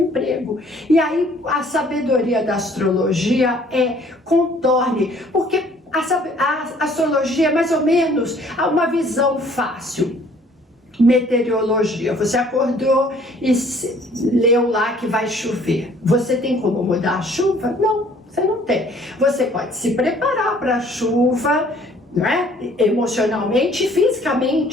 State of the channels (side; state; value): both; normal; correlation 0.57